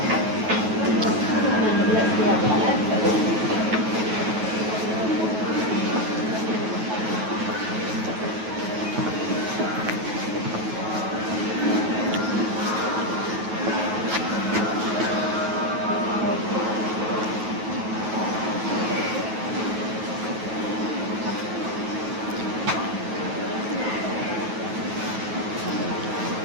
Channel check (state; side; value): late; left; 9.3 ms